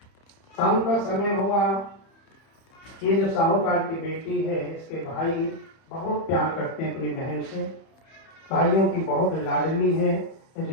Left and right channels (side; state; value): right; late; 31 ms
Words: शाम का समय हुआ। ये जो साहूकार की बेटी है, इसके भाई बहुत प्यार करते हैं अपनी बहन से। भाइयों की बहुत लाडली है,